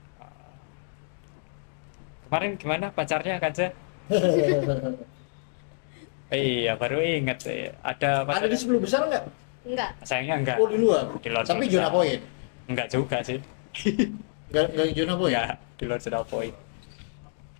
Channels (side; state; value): right; silent; digital silence